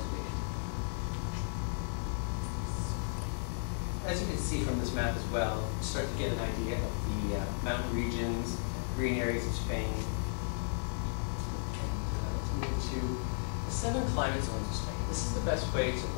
As you can see from this map as well, you start to get an idea of the mountain regions, green areas of Spain. And let's move to the 7 climate zones of Spain. This is the best way to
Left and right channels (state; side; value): silent; right; digital silence